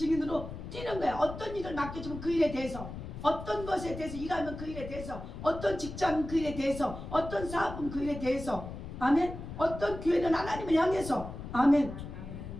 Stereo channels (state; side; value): noise; left; rumble, 10 dB below the sound